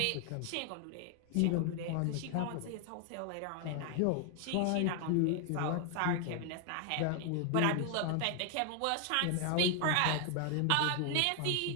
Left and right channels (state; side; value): different; both; correlation 0.00